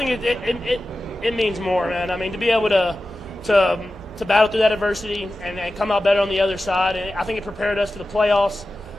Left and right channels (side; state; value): both; normal; correlation 0.93